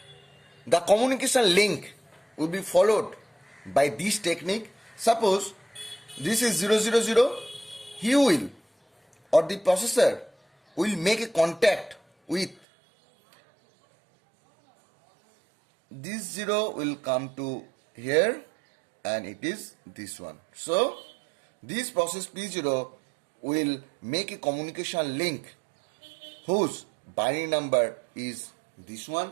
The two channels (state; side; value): drops out; left; at 12.6 s